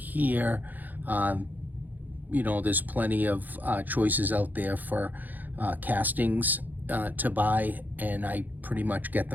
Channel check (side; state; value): left; late; 0.084 ms